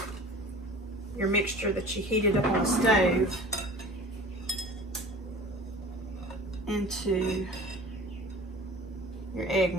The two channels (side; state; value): both; normal; correlation 0.42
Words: your mixture that you heated up on the stove into your egg